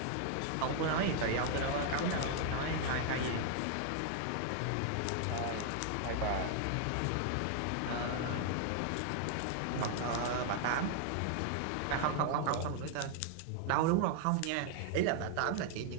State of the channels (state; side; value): different; both; correlation 0.00